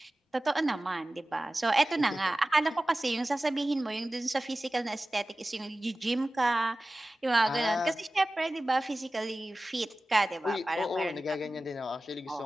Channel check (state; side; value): normal; both; correlation 0.96